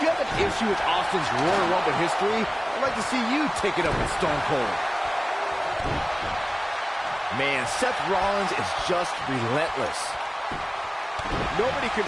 you have an issue with Austin's Royal Rumble history, I'd like to see you take it up with Stone Cold. Man, Seth Rollins is just relentless. Nobody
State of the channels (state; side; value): identical; both; correlation 1.00